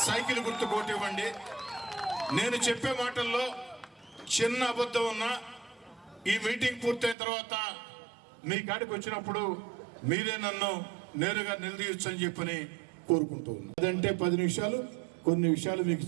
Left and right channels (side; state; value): left; drops out; at 7.2 s